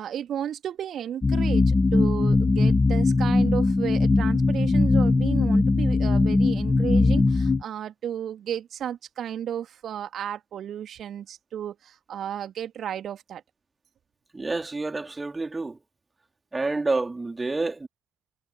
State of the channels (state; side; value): normal; both; correlation 0.91